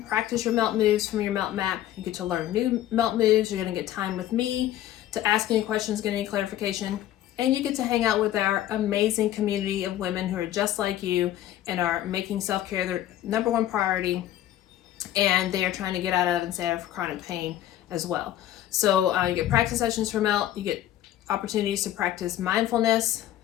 your melt moves from your melt map. You get to learn new melt moves. You're going to get time with me to ask any questions, get any clarification. And you get to hang out with our amazing community of women who are just like you and are making self-care their number one priority. And they are trying to get out of and stay out of chronic pain as well. So you get practice sessions for melt. You get opportunities to practice mindfulness.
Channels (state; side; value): quieter; right; 12.8 dB